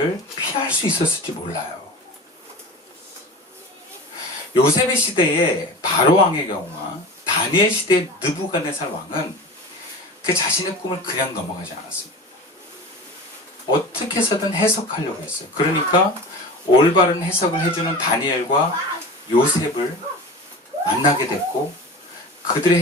피할 수 있었을지 몰라요. 요셉의 시대의 바로 왕의 경우와 다니엘 시대의 느부갓네살 왕은 그 자신의 꿈을 그냥 넘어가지 않았습니다. 어떻게 해서든 해석하려고 했어요. 그러니까 올바른 해석을 해주는 다니엘과 요셉을 만나게 됐고 그들의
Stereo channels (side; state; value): both; normal; correlation 0.34